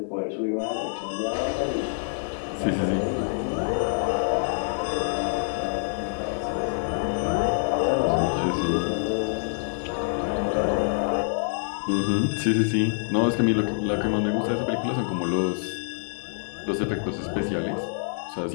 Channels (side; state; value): right; silent; 61 dB below the other